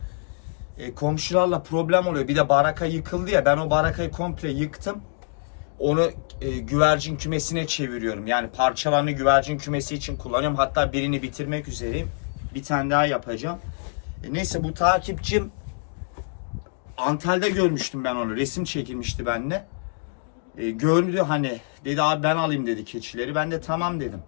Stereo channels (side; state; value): right; silent; digital silence